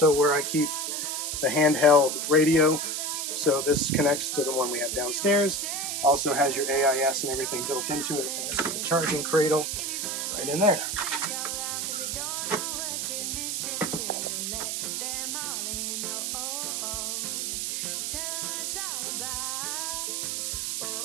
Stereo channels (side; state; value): right; noise; hiss, 1 dB below the sound